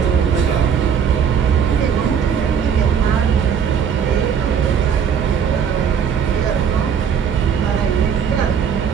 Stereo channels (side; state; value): left; quieter; 7.6 dB